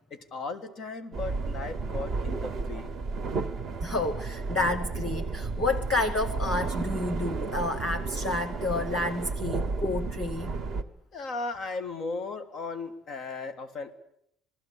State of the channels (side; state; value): both; normal; correlation 0.53